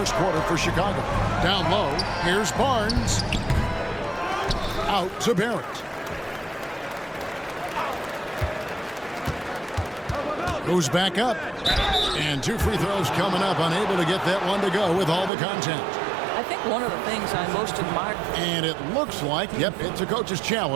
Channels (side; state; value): left; drops out; at 15.3 s